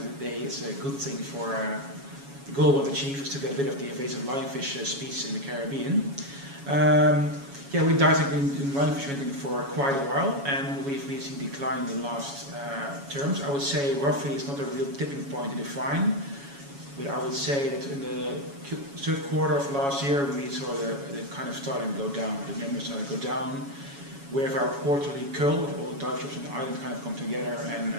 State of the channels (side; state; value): left; late; 7.2 ms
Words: the day it's a good thing for the goal of achieve is to get rid of the invasive lionfish species in the Caribbean. Yeah, we dived in lionfish hunting for quite a while, and we've seen decline in the last terms. I would say roughly it's not a real tipping point to define, but I would say that in the third quarter of last year we saw the kind of starting to go down, the numbers starting to go down. We have our quarterly cull, all the dive shops on the island kind of come together and